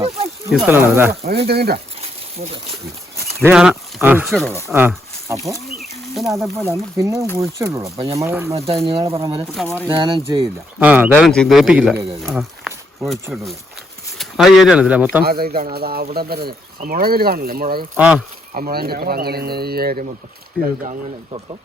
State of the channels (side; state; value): both; normal; correlation 0.76